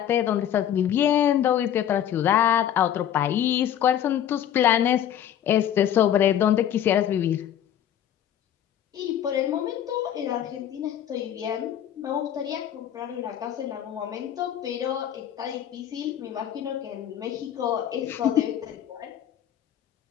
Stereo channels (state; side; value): quieter; right; 10.3 dB